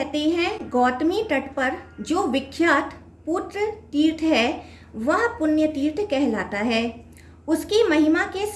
हैं गौतमी तट पर जो विख्यात पुत्र तीर्थ है वह पुण्य तीर्थ कहलाता है। उसकी महिमा के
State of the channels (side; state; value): both; identical; correlation 1.00